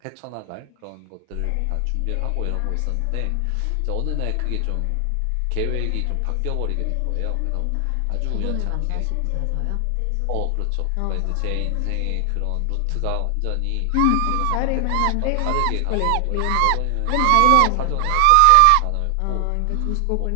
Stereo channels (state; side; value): different; both; correlation 0.00